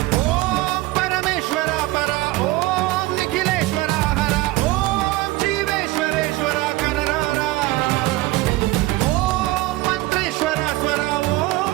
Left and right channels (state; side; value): quieter; left; 19.0 dB